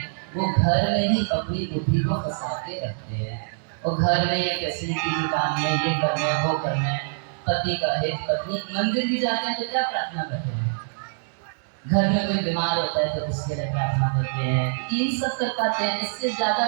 वो घर में ही अपनी बुद्धि को फंसा के रखते हैं, और घर में ये फैसिलिटी जुटाने, ये करना वो करना, पति का हित, पत्नी, मंदिर भी जाते हैं तो क्या प्रार्थना करते हैं, घर में कोई बीमार होता है तो उसके लिए प्रार्थना करते हैं, इन सब कर पाते हैं, इससे ज्यादा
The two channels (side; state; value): left; silent; digital silence